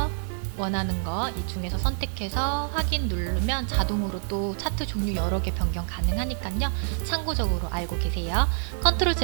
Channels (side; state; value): left; silent; digital silence